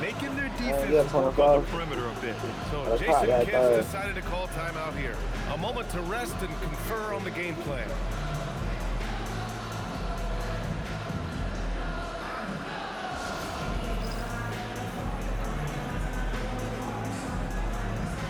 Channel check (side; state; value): both; identical; correlation 1.00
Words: their defense work on the perimeter a bit. So Jason Kidd decided to call timeout here. A moment to rest and confer on the game plan.